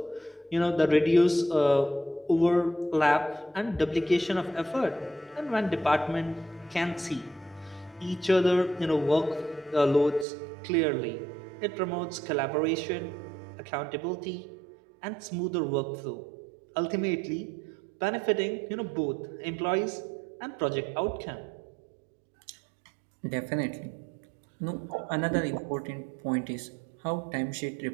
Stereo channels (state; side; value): drops out; left; at 10.2 s